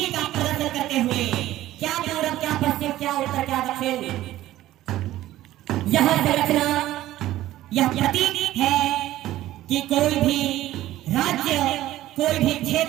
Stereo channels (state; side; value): quieter; left; 14.7 dB